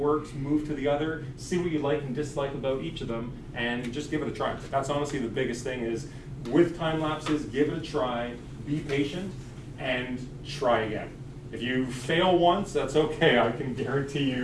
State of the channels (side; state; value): both; identical; correlation 1.00